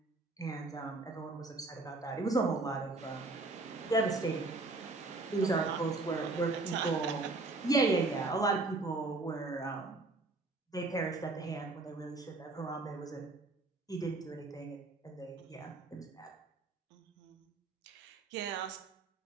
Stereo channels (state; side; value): quieter; left; 3.3 dB